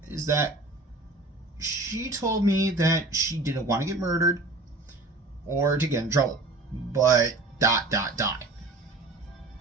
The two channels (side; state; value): left; quieter; 3.1 dB